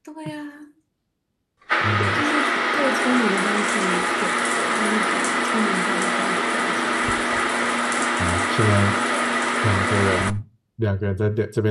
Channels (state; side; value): identical; both; correlation 1.00